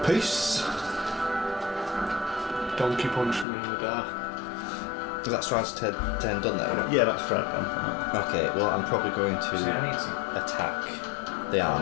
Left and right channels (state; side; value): drops out; right; at 3.5 s